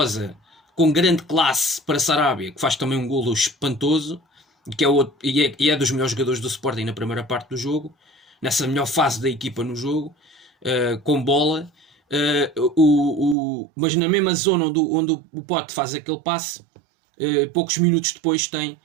com grande classe para Sarabia, que faz também um golo espantoso, que é dos melhores jogadores do Sporting na primeira parte do jogo, nessa melhor fase da equipa no jogo, com bola. Mas na mesma zona onde o Pote faz aquele passe, poucos minutos depois tem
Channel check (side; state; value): left; drops out; at 13.4 s